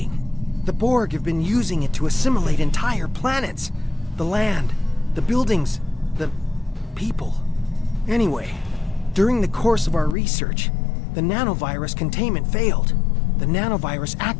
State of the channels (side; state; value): right; drops out; at 10.2 s